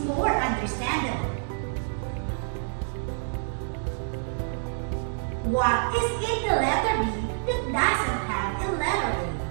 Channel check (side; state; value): left; silent; digital silence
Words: more understandable? What is in the letter B that doesn't have a letter A?